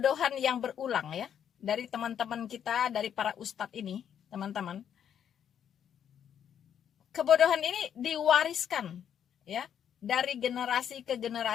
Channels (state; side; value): quieter; right; 9.0 dB